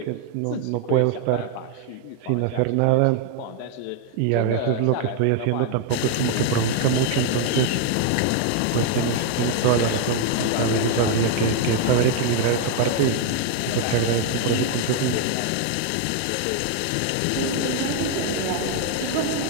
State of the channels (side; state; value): both; different; correlation 0.00